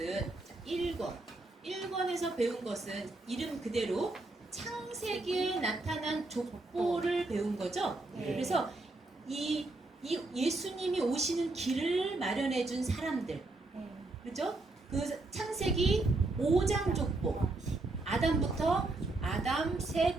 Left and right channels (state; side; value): quieter; left; 3.0 dB